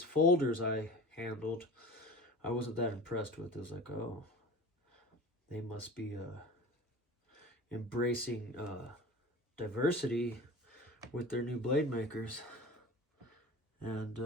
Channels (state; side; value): normal; both; correlation 0.37